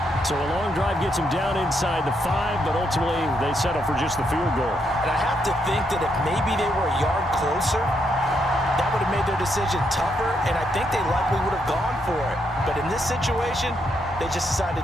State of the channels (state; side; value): normal; both; correlation 0.78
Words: So a long drive gets him down inside the 5, but ultimately they settle for just the field goal. And I have to think that if maybe they were a yard closer, that would have made their decision tougher, and I think they likely would have gone for it. But in this situation, they just